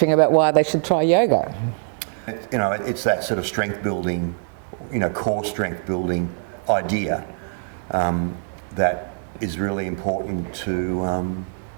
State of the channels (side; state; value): left; silent; 59 dB below the other